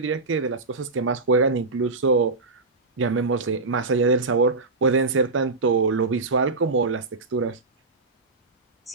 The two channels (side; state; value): left; quieter; 3.6 dB